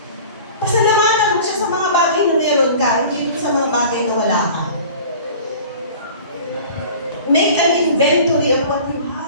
Pasalamatan mo siya sa mga bagay na meron ka, hindi sa mga bagay na wala ka. Make an inventory of what you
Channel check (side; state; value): both; inverted; correlation -0.42